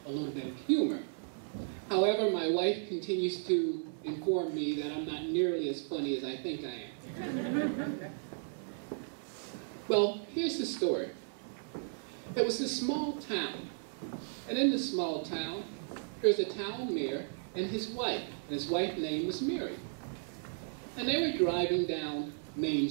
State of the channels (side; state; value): left; silent; 55 dB below the other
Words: a little bit of humor. However, my wife continues to inform me that I'm not nearly as funny as I think I am. Well, here's the story. There was this small town, and in this small town, there's a town mayor and his wife. And his wife's name was Mary. And they were driving down Main